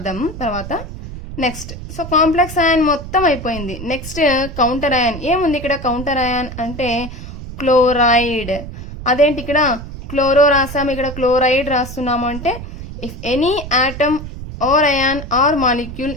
తర్వాత. నెక్స్ట్ సో కాంప్లెక్స్ అయాన్ మొత్తం అయిపోయింది. నెక్స్ట్ కౌంటర్ అయాన్ ఏముంది ఇక్కడ? కౌంటర్ అయాన్ అంటే క్లోరైడ్. అదేంటి ఇక్కడ క్లోరో రాసాము, ఇక్కడ క్లోరైడ్ రాస్తున్నాము అంటే if any atom or ion or molecule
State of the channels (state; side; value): noise; right; rumble, 10 dB below the sound